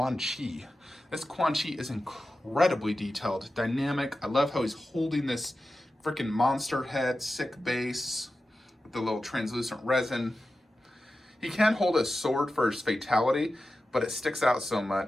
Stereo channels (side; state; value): both; normal; correlation 0.93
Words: Chi. This Quan Chi is incredibly detailed, dynamic. I love how he's holding this freaking monster head, sick base, with the little translucent resin. He can hold a sword for his fatality, but it sticks out so